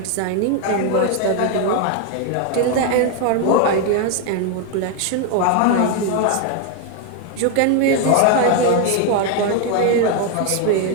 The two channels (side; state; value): both; different; correlation 0.01